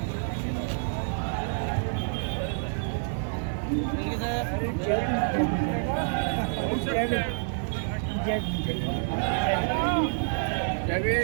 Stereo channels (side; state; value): left; silent; digital silence